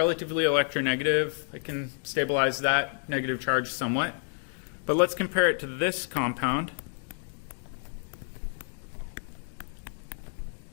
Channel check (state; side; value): silent; right; 58 dB below the other